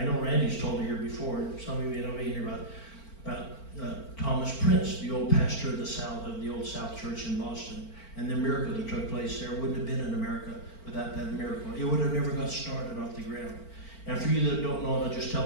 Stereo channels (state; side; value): late; right; 4.4 ms